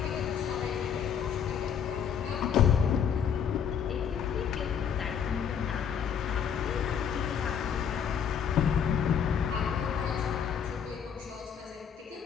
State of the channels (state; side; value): quieter; right; 7.8 dB